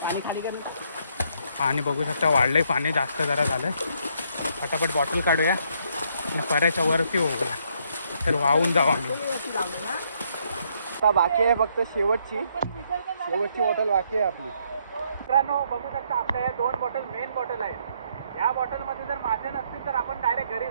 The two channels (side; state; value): both; inverted; correlation -0.71